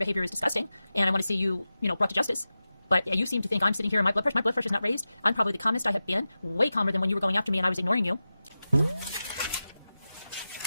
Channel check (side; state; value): both; inverted; correlation -0.94